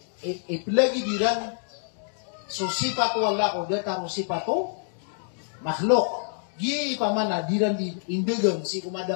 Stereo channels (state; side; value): silent; right; digital silence